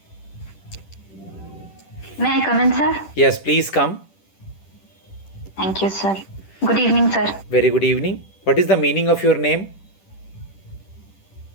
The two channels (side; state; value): right; late; 10 ms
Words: May I come in, sir? Yes, please come. Thank you, sir. Good evening, sir. Very good evening. What is the meaning of your name?